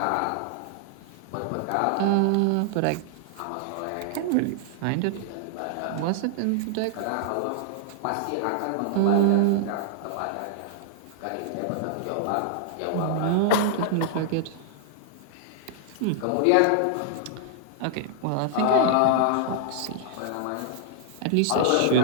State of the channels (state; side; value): different; both; correlation -0.01